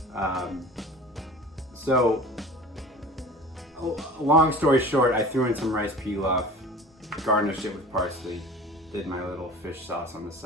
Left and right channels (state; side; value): normal; both; correlation 0.40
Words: So, long story short, I threw in some rice pilaf, garnished it with parsley, did my little fish sauce on the